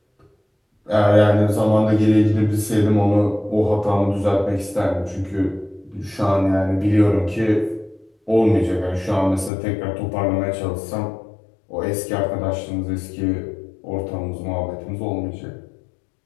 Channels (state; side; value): drops out; right; at 9.5 s